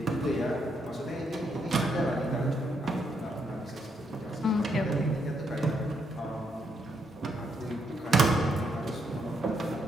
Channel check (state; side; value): normal; both; correlation 0.77